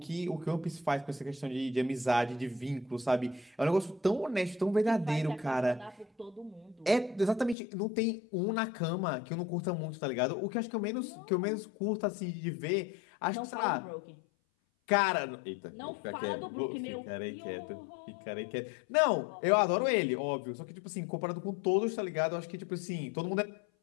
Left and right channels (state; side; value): drops out; right; at 7.6 s